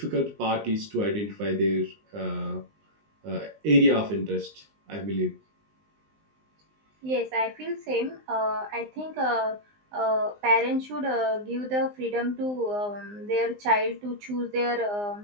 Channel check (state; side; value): late; left; 19 ms